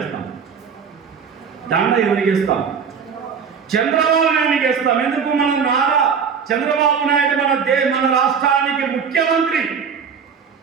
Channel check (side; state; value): left; quieter; 6.5 dB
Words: దండ ఎవరికి ఇస్తాం? చంద్రబాబు నాయుడికి ఇస్తాం. ఎందుకు? మన నారా చంద్రబాబు నాయుడు మన రాష్ట్రానికి ముఖ్యమంత్రి.